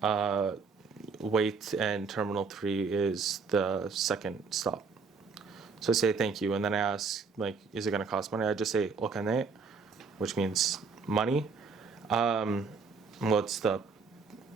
wait, and Terminal 3 is the second stop. So I say thank you, and then I ask, like, is it going to cost money? I just say okane, which means money. What's the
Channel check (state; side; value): quieter; left; 4.9 dB